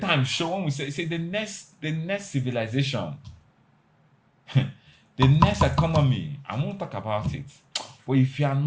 show, when we say the next civilization, the next economy, I won't talk about it. But if you are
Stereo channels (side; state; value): both; identical; correlation 1.00